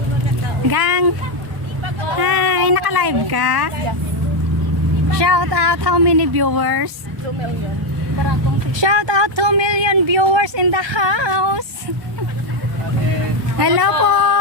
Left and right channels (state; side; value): late; left; 1.1 ms